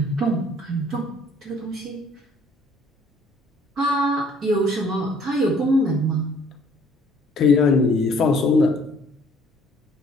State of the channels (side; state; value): both; normal; correlation 0.58